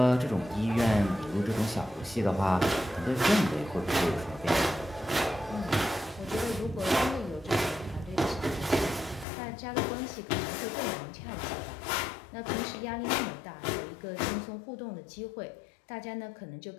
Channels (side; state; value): right; drops out; at 9.2 s